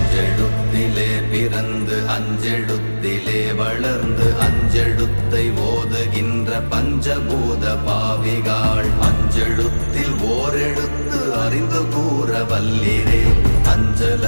பிறந்து அஞ்செழுத்திலே வளர்ந்து அஞ்செழுத்தை ஓதுகின்ற பஞ்சபூத பாவிகாள், அஞ்செழுத்தில் ஓரெழுத்து அறிந்து கூற வல்லிரே. அஞ்சல்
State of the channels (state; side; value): inverted; both; correlation -1.00